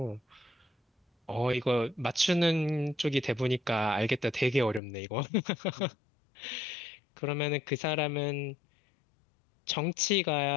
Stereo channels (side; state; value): right; drops out; at 4.8 s